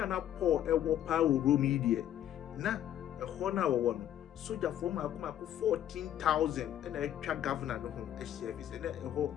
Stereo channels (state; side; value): quieter; right; 11.3 dB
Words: a na Paul ɛwɔ paa wɔ Rome yi deɛ na ɛhɔ na wɔwɔ no sogyafoɔ maako 14,000 ɛna atwa governor no ho ahyia bi sɛ na ɛhɔ